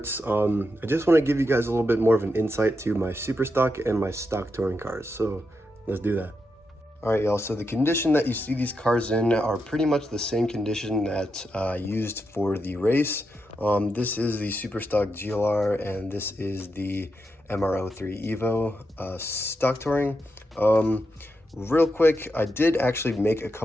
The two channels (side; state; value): both; normal; correlation 0.85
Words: I just want to give you guys a little bit more of an insight to my super stock and my stock touring cars, so let's do that. Alright y'all, so the condition that you see these cars in are pretty much the same condition that I used for the race. This is the super stock GLR and this is the MR03 Evo stock touring. Real quick, I did actually make a